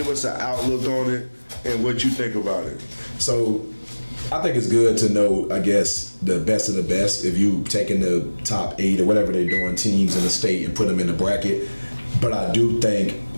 us an outlook on it and what you think about it. So I think it's good to know, I guess, the best of the best. If you taking the top 8 or whatever they're doing teams in the state and put them in the bracket. But I do think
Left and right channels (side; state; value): both; inverted; correlation -1.00